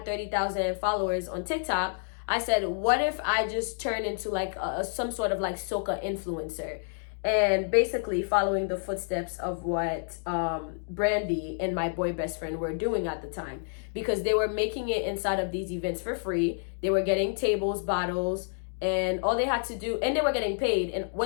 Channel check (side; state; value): right; silent; digital silence